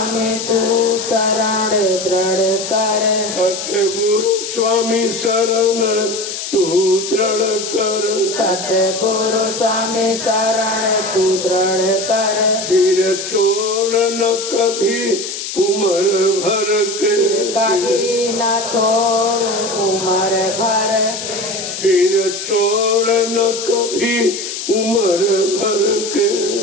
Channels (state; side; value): noise; left; hiss, 6 dB below the sound